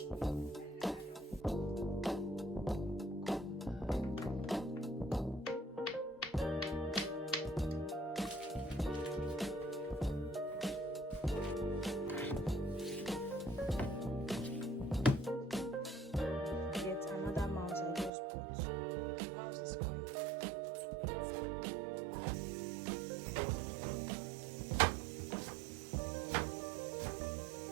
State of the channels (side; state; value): left; drops out; at 18.1 s